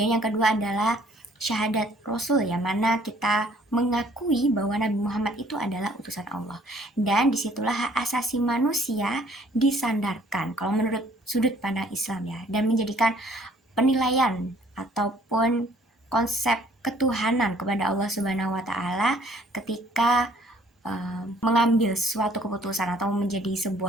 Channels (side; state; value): both; normal; correlation 0.59